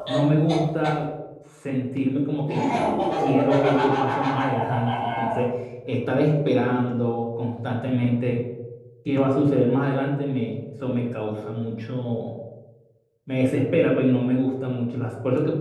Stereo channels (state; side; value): identical; both; correlation 1.00